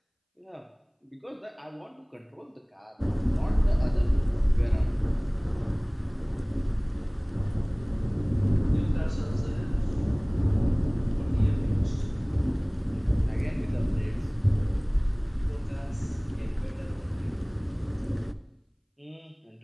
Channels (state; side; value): identical; both; correlation 1.00